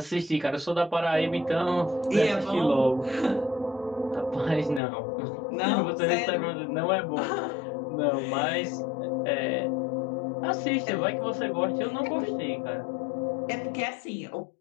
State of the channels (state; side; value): drops out; right; at 4.8 s